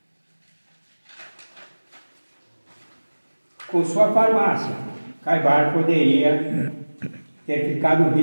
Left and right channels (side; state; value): both; inverted; correlation -1.00